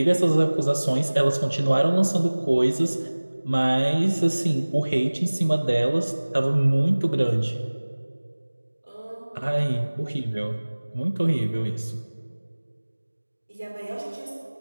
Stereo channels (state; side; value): inverted; both; correlation -1.00